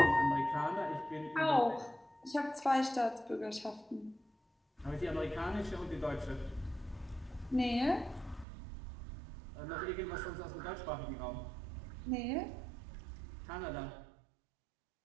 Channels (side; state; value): left; drops out; at 8.5 s